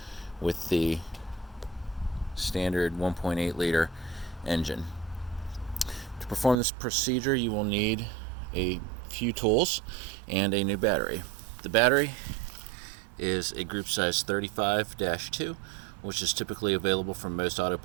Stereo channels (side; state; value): left; drops out; at 6.6 s